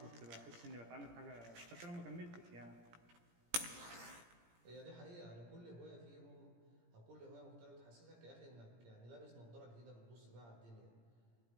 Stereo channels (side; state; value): left; late; 17 ms